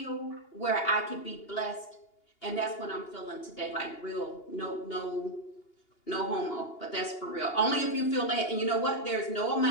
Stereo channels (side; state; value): right; late; 2.8 ms